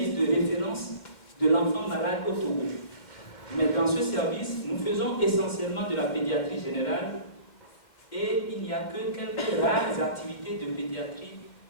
de référence de l'enfant malade au Togo. Mais dans ce service, nous faisons essentiellement de la pédiatrie générale et il n'y a que quelques rares activités de pédiatrie,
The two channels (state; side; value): late; right; 2.2 ms